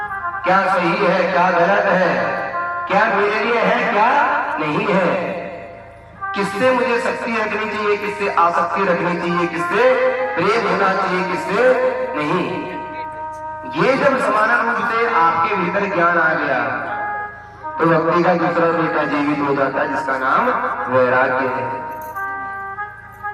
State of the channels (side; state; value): both; identical; correlation 1.00